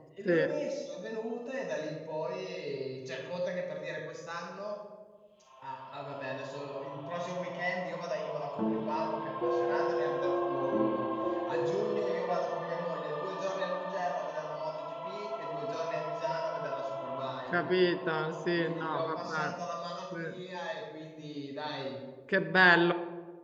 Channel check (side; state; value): both; identical; correlation 1.00